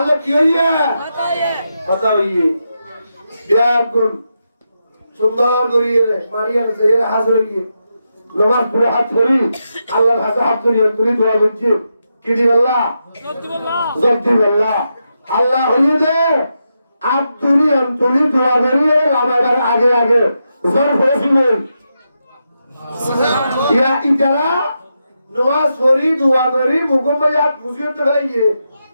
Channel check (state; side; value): inverted; both; correlation -0.86